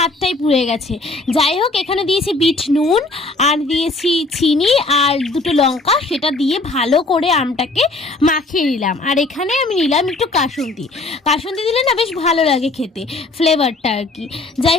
পুড়ে গেছে। যাই হোক, এখানে দিয়েছি বিট নুন আর দিয়েছি চিনি আর দুটো লঙ্কা, সেটা দিয়ে ভালো করে আমটাকে মাখিয়ে নিলাম। আর এখানে আমি নিলাম একটু কাসুন্দি। কাসুন্দি দিলে না বেশ ভালো লাগে খেতে, ফ্লেভারটা আর কি।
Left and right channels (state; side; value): quieter; right; 3.1 dB